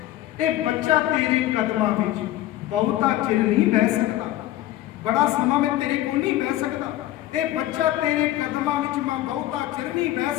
ਇਹ ਬੱਚਾ ਤੇਰੇ ਕਦਮਾਂ ਵਿੱਚ ਬਹੁਤਾ ਚਿਰ ਨਹੀਂ ਬਹਿ ਸਕਦਾ, ਬੜਾ ਸਮਾਂ ਮੈਂ ਤੇਰੇ ਕੋਲ ਨਹੀਂ ਬਹਿ ਸਕਦਾ। ਇਹ ਬੱਚਾ ਤੇਰੇ ਕਦਮਾਂ ਵਿੱਚ ਮੈਂ ਬਹੁਤਾ ਚਿਰ ਨਹੀਂ ਬਹਿ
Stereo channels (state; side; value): quieter; right; 14.5 dB